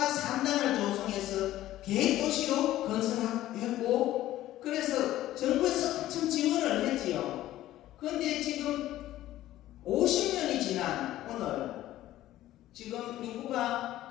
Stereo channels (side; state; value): right; quieter; 14.4 dB